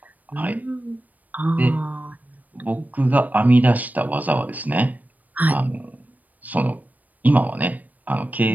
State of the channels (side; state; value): left; late; 0.079 ms